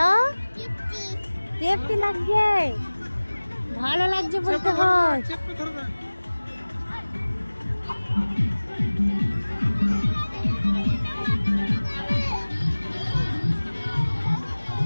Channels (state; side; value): inverted; both; correlation -1.00